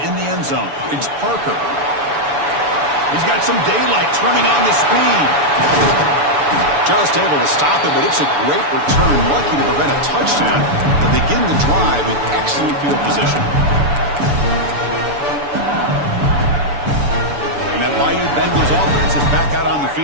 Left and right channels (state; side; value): late; left; 6.9 ms